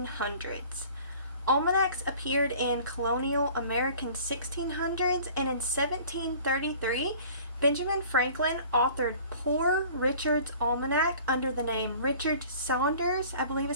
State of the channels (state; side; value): inverted; both; correlation -0.47